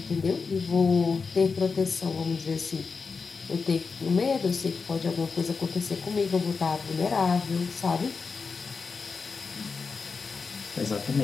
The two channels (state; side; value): quieter; right; 4.9 dB